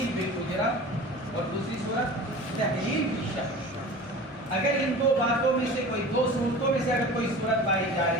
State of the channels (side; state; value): left; noise; rumble, 28 dB below the sound